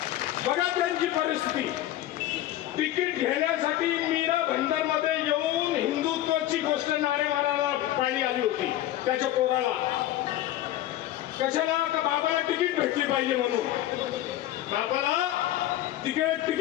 बघा त्यांची परिस्थिती. तिकीट घेण्यासाठी मीरा भाईंदरमध्ये येऊन हिंदुत्वाची गोष्ट नारे मारायला पाणी आली होती त्याच्या पोराला. कशाला? का बाबाला तिकीट भेटली पाहिजे म्हणून. बाबाला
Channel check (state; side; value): quieter; right; 13.7 dB